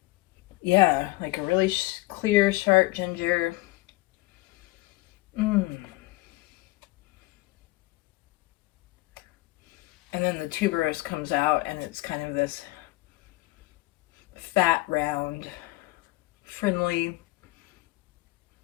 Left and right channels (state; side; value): quieter; right; 20.6 dB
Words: Yeah, like a really clear, sharp ginger. And then the tuberose comes out, and it's kind of this fat, round, friendly,